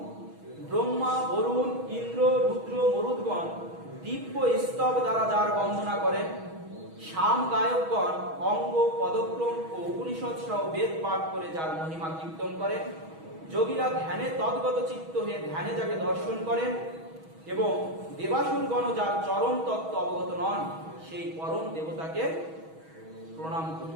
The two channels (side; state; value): left; late; 6.2 ms